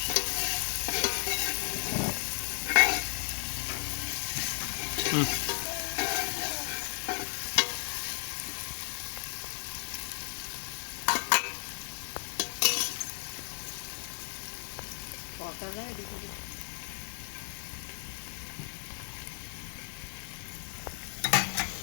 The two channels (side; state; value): right; silent; digital silence